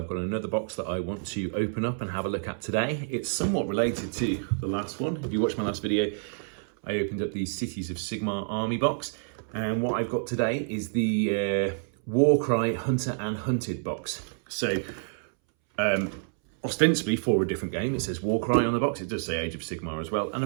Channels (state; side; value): silent; left; 59 dB below the other